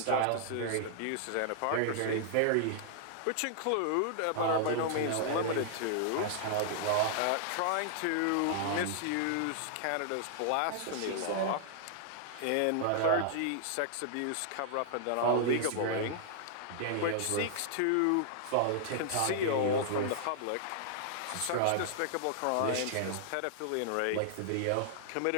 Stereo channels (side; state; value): both; different; correlation -0.01